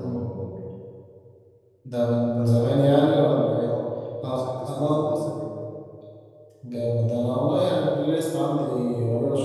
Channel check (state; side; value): identical; both; correlation 1.00